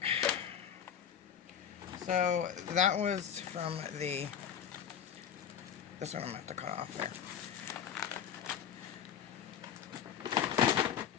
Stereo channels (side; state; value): right; quieter; 8.7 dB